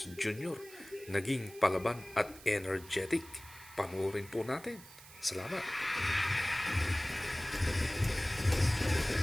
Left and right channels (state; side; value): noise; right; hiss, 19 dB below the sound